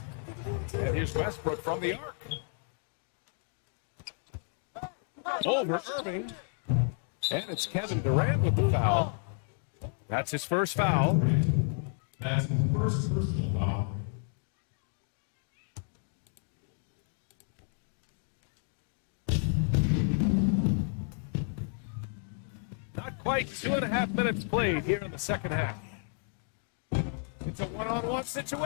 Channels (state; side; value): silent; right; 56 dB below the other